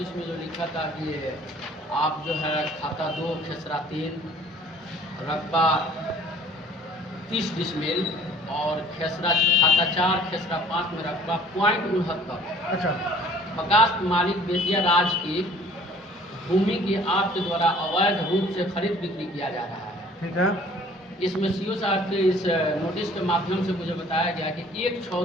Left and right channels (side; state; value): both; normal; correlation 0.53